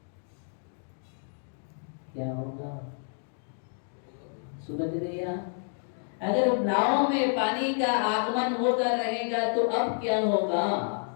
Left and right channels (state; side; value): silent; right; 58 dB below the other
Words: क्या होगा? सुबह भैया, अगर नाव में पानी का आगमन होता रहेगा तो अब क्या होगा?